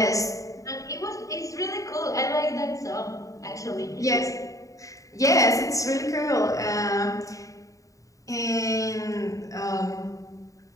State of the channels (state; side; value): late; right; 0.16 ms